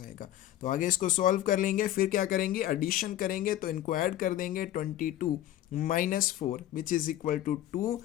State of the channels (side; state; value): right; quieter; 13.2 dB